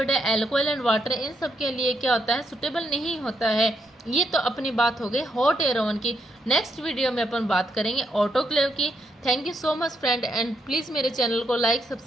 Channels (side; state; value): both; normal; correlation 0.78